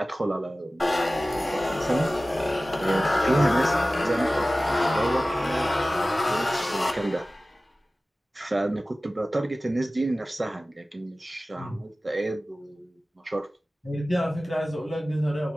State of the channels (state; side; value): normal; both; correlation 0.97